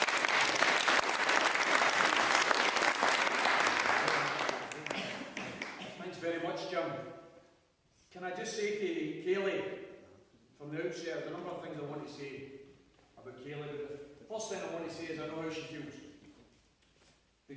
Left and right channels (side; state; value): both; identical; correlation 1.00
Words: Thanks very much, Jim. Can I just say to Kayleigh, from the outset, there's a number of things I want to say about Kayleigh, but the first thing I want to say is I know how she feels.